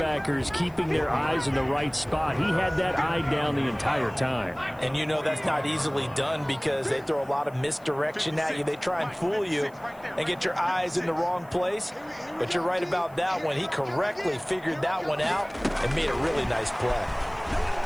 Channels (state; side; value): noise; left; hiss, 29 dB below the sound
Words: keeping their eyes in the right spot, he had that eye down the entire time. And you know that's not easily done because they throw a lot of misdirection at you. They try and fool you and get your eyes in the wrong place. But you're right about that one. He correctly figured that one out and made a really nice play.